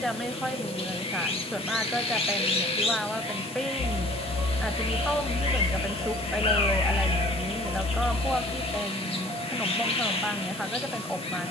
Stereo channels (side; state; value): both; normal; correlation 0.51